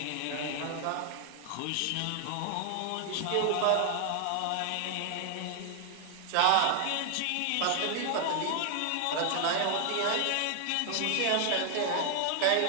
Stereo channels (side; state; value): both; different; correlation 0.00